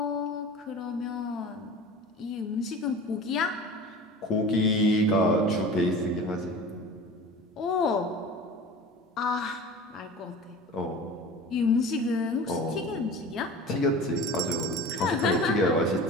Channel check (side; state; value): both; normal; correlation 0.37